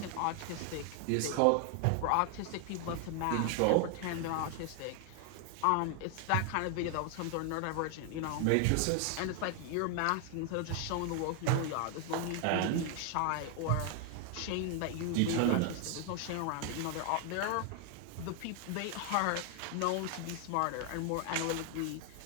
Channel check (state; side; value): different; both; correlation 0.00